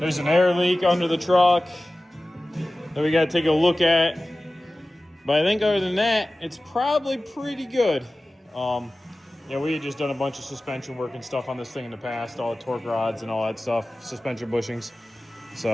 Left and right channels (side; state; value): both; normal; correlation 0.96